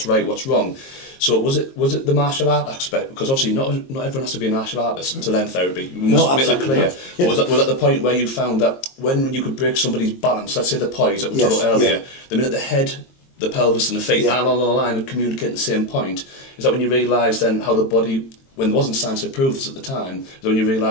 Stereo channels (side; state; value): right; late; 22 ms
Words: right, what's wrong. So was it the martial art aspect? Because obviously not everyone has to be a martial artist to learn therapy. We must make that clear. Yeah. Was that the point where you found that when you could break somebody's balance, let's say the poise that we talked about earlier, the minute the head, the pelvis and the feet are on the line and communicate at the same point, is that when you realise then how the body, when there wasn't science to prove this at the time, is when you